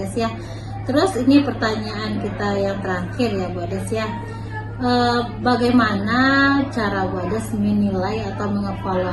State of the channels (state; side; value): identical; both; correlation 1.00